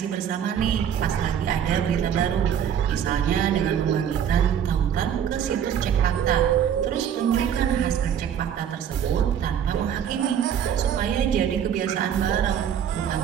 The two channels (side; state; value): left; quieter; 8.9 dB